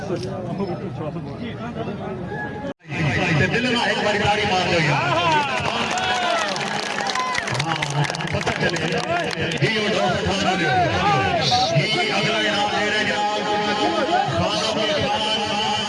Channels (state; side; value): identical; both; correlation 1.00